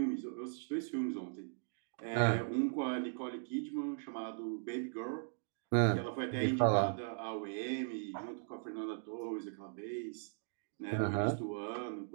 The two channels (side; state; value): left; silent; digital silence